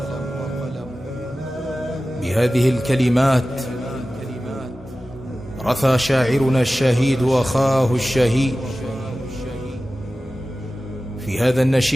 بهذه الكلمات رثى شاعرنا الشهيد أخاه الشهيد في هذا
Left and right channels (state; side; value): normal; both; correlation 0.95